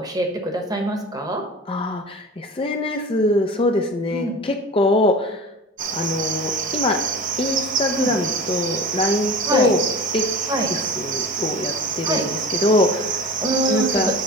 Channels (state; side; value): normal; both; correlation 0.35